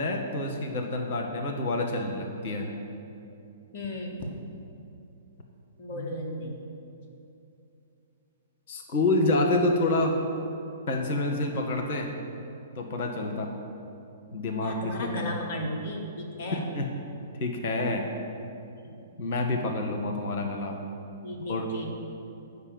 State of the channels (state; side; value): inverted; both; correlation -0.33